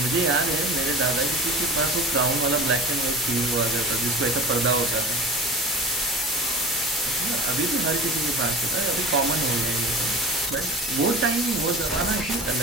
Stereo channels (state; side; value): normal; both; correlation 0.35